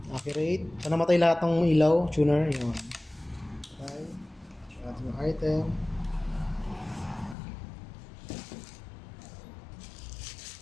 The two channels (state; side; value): drops out; right; at 7.4 s